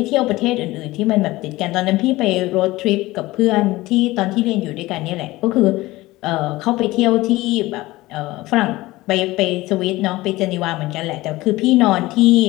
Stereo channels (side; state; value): right; quieter; 18.9 dB